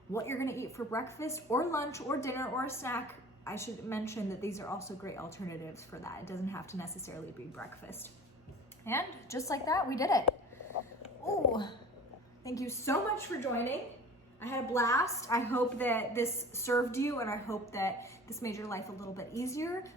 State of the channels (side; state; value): both; normal; correlation 0.41